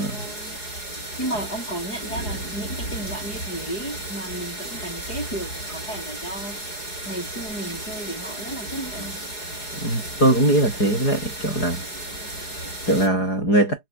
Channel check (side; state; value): right; late; 4.8 ms